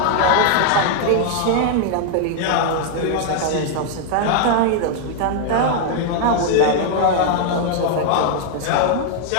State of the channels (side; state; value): both; different; correlation 0.00